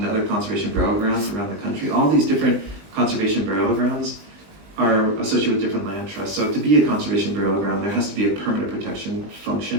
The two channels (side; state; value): left; late; 20 ms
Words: the other conservation burial grounds around the country. All these different conservation burial grounds are associated with different land trusts. So to be a conservation burial ground, there has to be a permanent protection